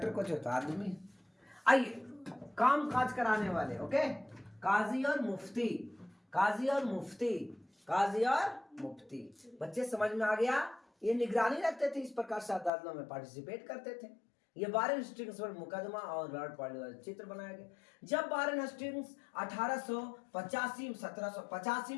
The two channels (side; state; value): right; drops out; at 12.7 s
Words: कुछ होता आदमी है। आइए, काम काज कराने वाले, ओके, काजी और मुफ्ती, काजी और मुफ्ती, काजी और मुफ्ती। बच्चे समझ में आ गया? ये निगरानी रखते थे, इस प्रकार से अदालतों में पार्टिसिपेट करते थे। ये वारेन हेस्टिंग्स पर मुकदमा और लॉर्ड पॉलिटिकल चित्र बनाया गया। जब वारेन हेस्टिंग्स 1785